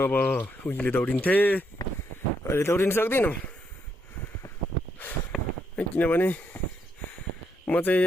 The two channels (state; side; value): normal; both; correlation 0.77